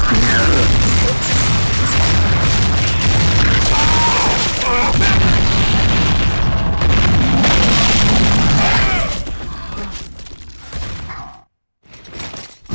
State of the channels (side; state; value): both; inverted; correlation -1.00